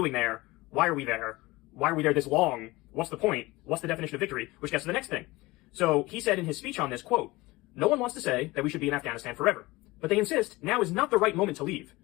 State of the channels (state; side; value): quieter; right; 21.0 dB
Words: there. Why are we there? Why are we there this long? What's the point? What's the definition of victory? Which gets to the next thing. So he said in his speech on this, quote, "No one wants to say that we should be in Afghanistan forever, but they insist now is not the right moment to leave.